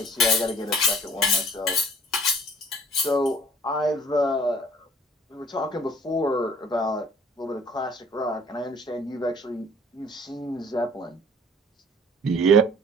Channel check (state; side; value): normal; both; correlation 0.53